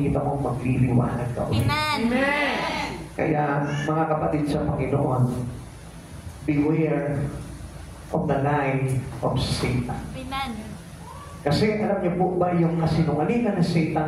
mong magliliwanag ka ulit. Amen. Kaya, mga kapatid sa Panginoon, beware of the lie of Satan. Amen. Kasi alam niyo po ba yung kasinungalingan ng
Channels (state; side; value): identical; both; correlation 1.00